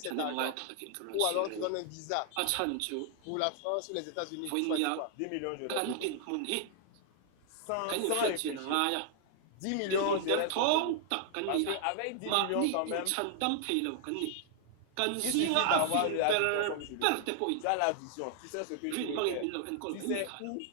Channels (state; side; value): different; both; correlation 0.00